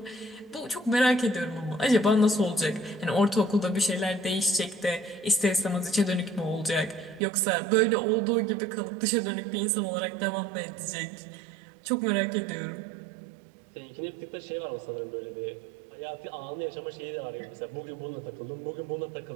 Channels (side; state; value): left; drops out; at 7.2 s